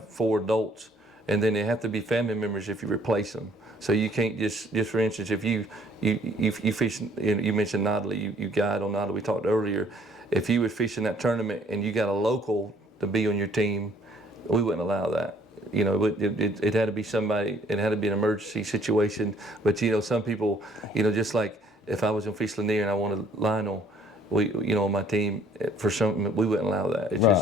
4 adults, and then they have to be family members if you replace them. So you can't just for instance, if you fish, you mentioned Notley, you guide on Notley, we talked earlier. If you were fishing that tournament and you got a local to be on your team, we wouldn't allow that. It had to be somebody, it had to be an emergency situation. But some people, just like if I was on Fish Lanier and I wanted Lionel, on my team, for some, we wouldn't allow that. It's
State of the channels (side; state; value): both; normal; correlation 0.60